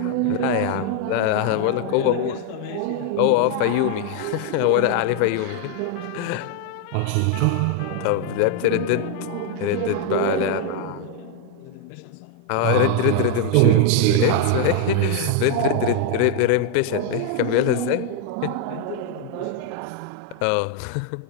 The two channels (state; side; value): different; both; correlation 0.01